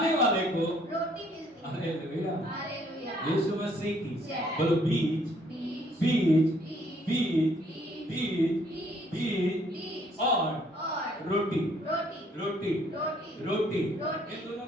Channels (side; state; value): both; normal; correlation 0.64